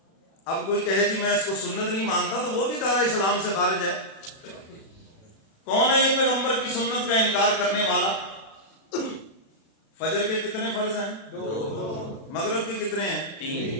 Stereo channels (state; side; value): late; right; 36 ms